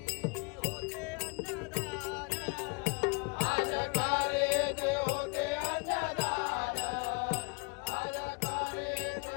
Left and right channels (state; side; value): quieter; right; 31.3 dB